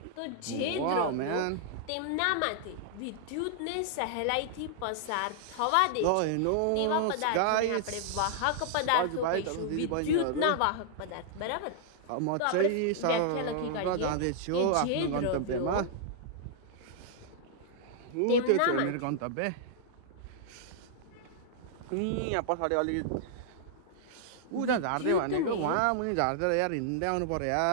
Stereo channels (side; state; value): both; different; correlation -0.01